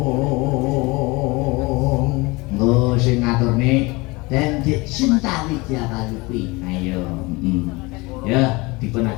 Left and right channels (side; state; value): right; quieter; 24.4 dB